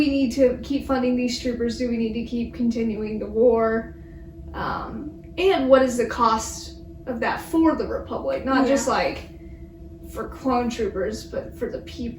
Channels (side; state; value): both; identical; correlation 1.00